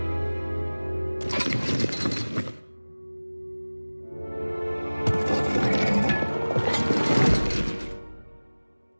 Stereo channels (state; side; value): inverted; both; correlation -1.00